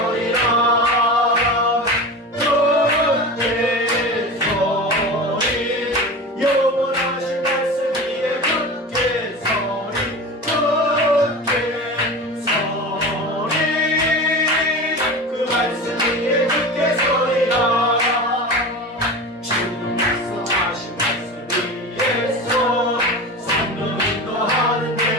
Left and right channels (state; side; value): normal; both; correlation 0.30